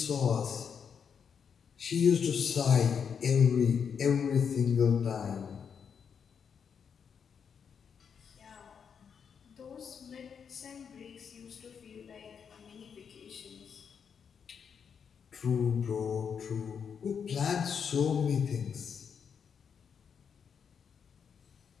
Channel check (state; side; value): quieter; right; 6.9 dB